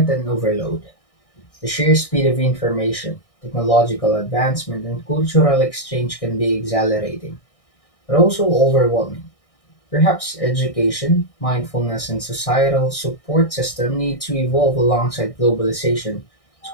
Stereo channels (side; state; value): right; late; 1.6 ms